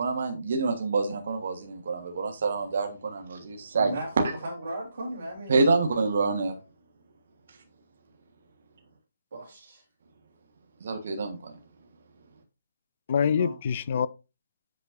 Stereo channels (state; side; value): inverted; both; correlation -0.77